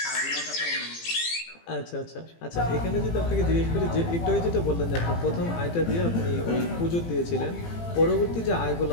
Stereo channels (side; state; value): right; late; 18 ms